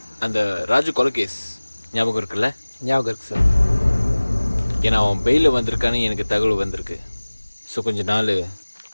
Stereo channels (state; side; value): inverted; both; correlation -1.00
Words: அந்த ராஜு கொலை கேஸ் ஞாபகம் இருக்குல்ல? ஞாபகம் இருக்கு சார். ஏன்னா அவன் பெயிலில் வந்திருக்கான்னு எனக்கு தகவல் வந்திருக்கு. ஸோ கொஞ்ச நாள்